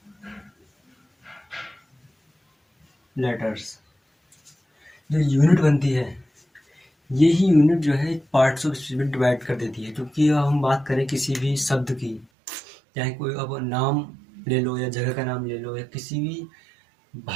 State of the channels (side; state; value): left; drops out; at 12.2 s